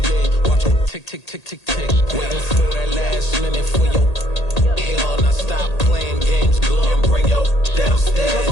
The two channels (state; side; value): late; right; 1.8 ms